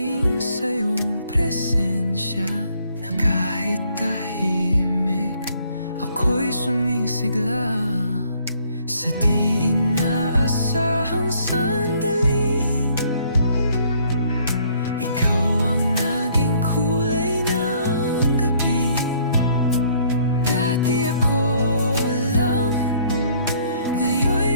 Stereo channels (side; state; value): both; inverted; correlation -0.63